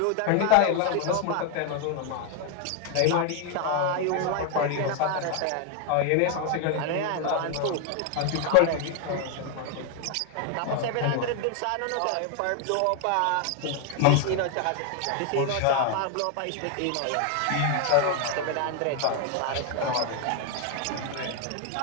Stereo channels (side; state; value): both; different; correlation 0.00